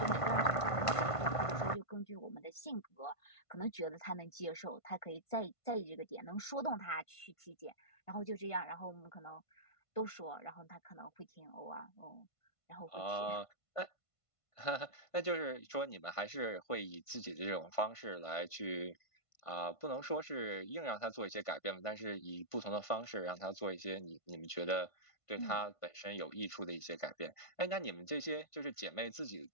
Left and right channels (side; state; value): right; late; 1.5 ms